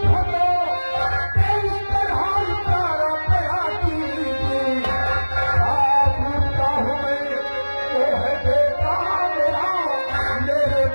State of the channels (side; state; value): both; inverted; correlation -1.00